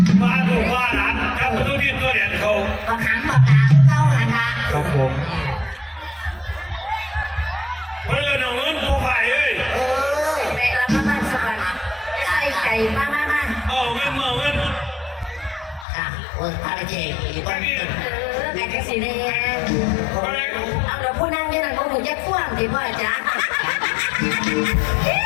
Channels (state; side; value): drops out; right; at 15.9 s